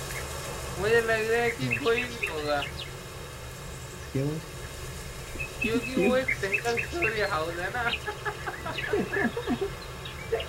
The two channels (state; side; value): identical; both; correlation 1.00